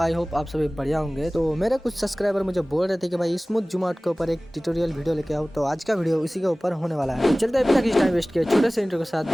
होप आप सभी बढ़िया होंगे। तो मेरे कुछ सब्सक्राइबर मुझे बोल रहे थे कि भाई स्मूथ जूम आउट के ऊपर एक ट्यूटोरियल वीडियो लेके आओ, तो आज का वीडियो उसी के ऊपर होने वाला है। तो चलते हैं बिना किसी टाइम वेस्ट किए छोटे से इंट्रो के साथ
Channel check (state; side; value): normal; both; correlation 0.98